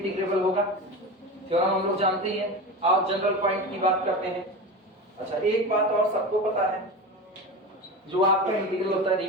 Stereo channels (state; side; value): normal; both; correlation 0.26